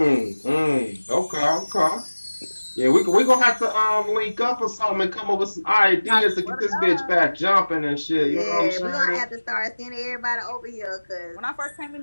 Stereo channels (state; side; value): inverted; both; correlation -1.00